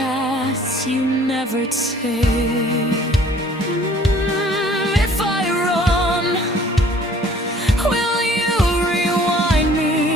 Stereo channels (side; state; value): both; normal; correlation 0.54